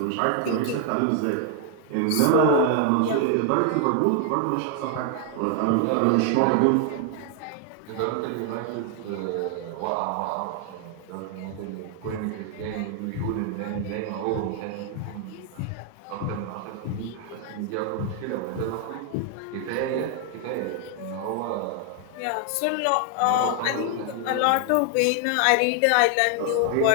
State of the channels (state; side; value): different; both; correlation 0.00